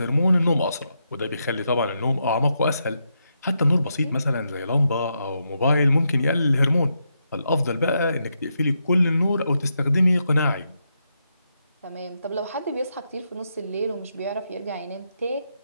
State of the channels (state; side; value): inverted; both; correlation -0.83